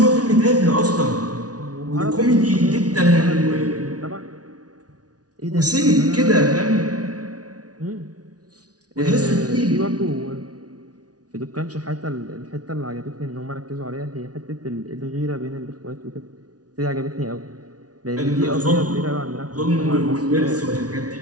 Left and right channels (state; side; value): late; left; 0.68 ms